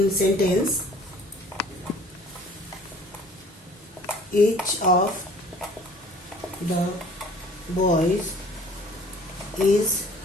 sentence. Each of the boys is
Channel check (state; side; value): normal; both; correlation 0.52